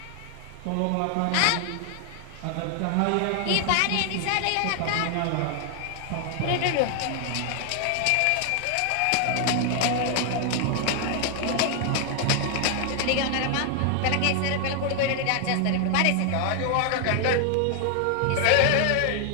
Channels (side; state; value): both; different; correlation 0.00